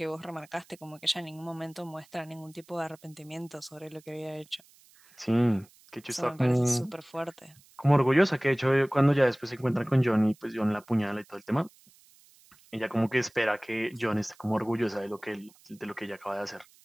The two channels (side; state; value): right; noise; hiss, 28 dB below the sound